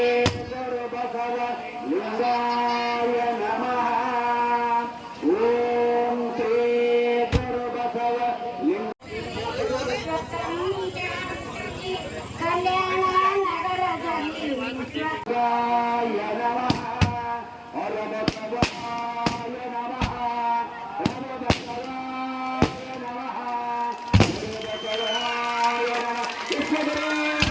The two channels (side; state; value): both; identical; correlation 1.00